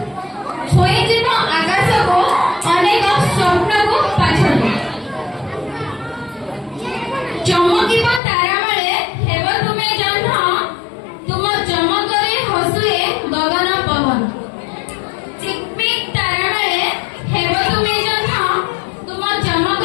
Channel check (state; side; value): drops out; right; at 8.2 s